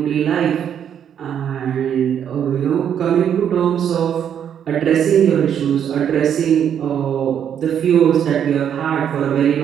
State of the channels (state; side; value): quieter; left; 8.9 dB